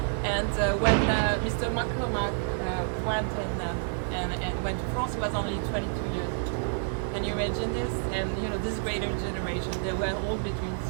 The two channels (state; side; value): silent; left; digital silence